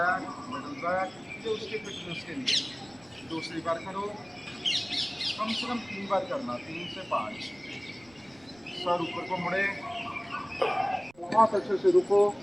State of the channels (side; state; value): right; noise; rumble, 29 dB below the sound